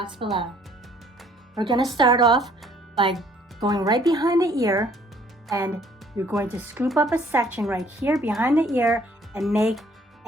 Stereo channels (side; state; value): both; normal; correlation 0.60